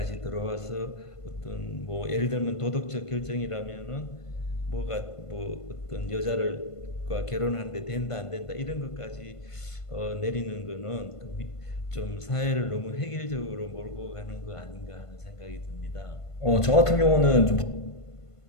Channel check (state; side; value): late; right; 1.5 ms